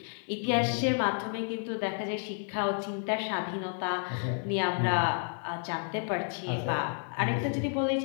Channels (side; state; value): right; silent; 57 dB below the other